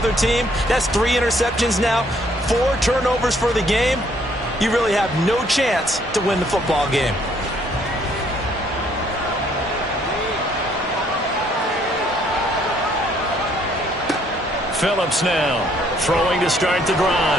team, that's 3 interceptions now, 4 turnovers for the game. You really have no chance to win the football game. Phillips now throwing to start the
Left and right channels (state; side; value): normal; both; correlation 0.65